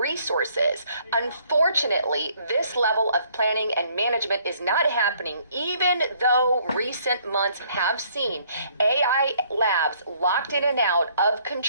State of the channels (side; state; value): both; inverted; correlation -0.64